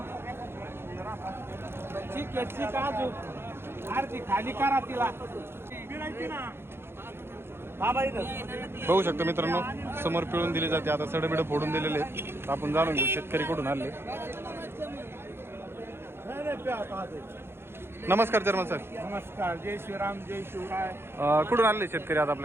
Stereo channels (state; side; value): late; left; 0.11 ms